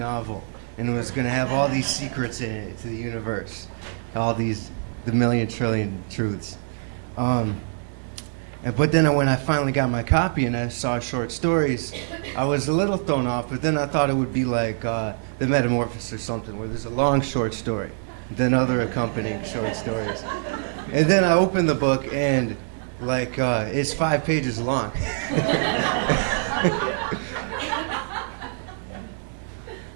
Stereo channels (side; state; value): left; silent; 62 dB below the other